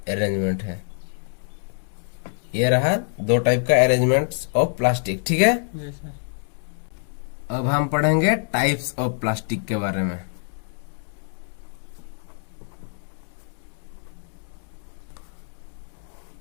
अरेंजमेंट है। ये रहा 2 टाइप का अरेंजमेंट ऑफ प्लास्टिक, ठीक है। जी सर। अब हम पढ़ेंगे टाइप्स ऑफ प्लास्टिक के बारे में।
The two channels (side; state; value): right; silent; digital silence